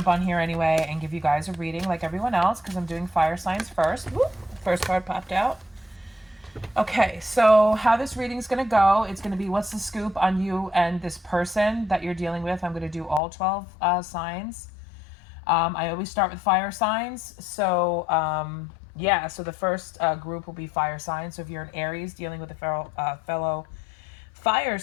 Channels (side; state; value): right; drops out; at 13.2 s